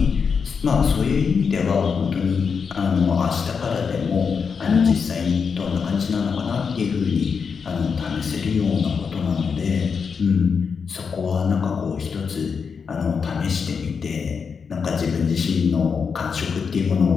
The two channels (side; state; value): right; quieter; 5.9 dB